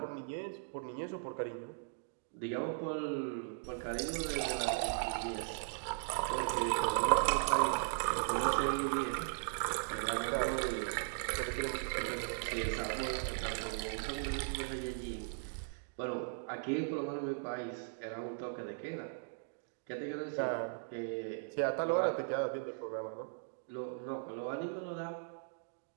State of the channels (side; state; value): left; silent; digital silence